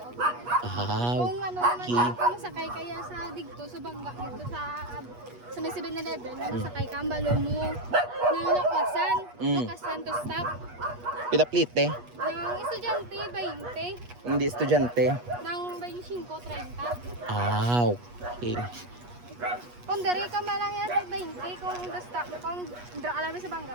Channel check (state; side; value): late; left; 8.3 ms